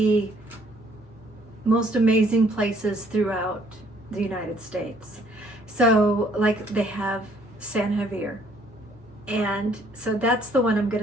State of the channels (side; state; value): both; normal; correlation 0.63